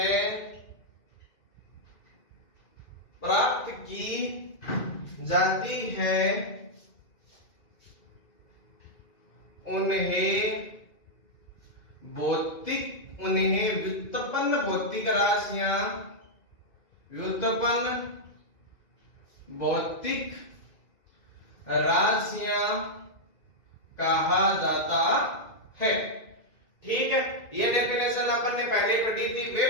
प्राप्त की जाती है, उन्हें व्युत्पन्न भौतिक राशियां, व्युत्पन्न भौतिक राशियां कहा जाता है। ठीक है, यह डेफिनेशन अपन ने पहले पढ़ी थी।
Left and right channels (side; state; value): right; late; 2.3 ms